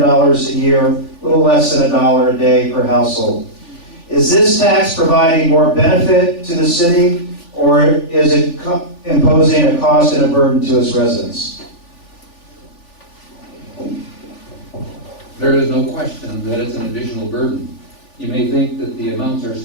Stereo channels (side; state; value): right; late; 3.4 ms